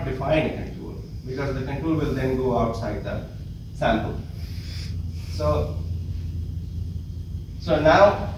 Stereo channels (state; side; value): identical; both; correlation 1.00